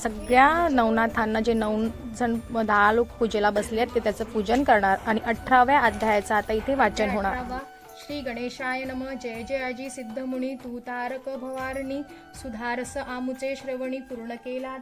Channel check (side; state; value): both; identical; correlation 1.00